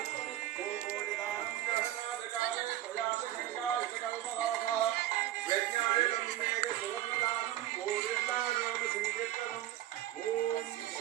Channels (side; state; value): left; quieter; 13.6 dB